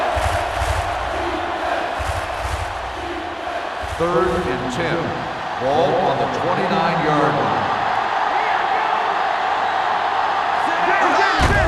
Third and 10. Ball on the 29-yard line.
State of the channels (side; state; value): both; identical; correlation 1.00